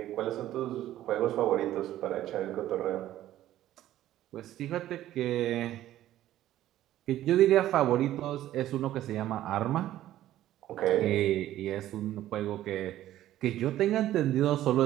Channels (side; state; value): left; quieter; 13.4 dB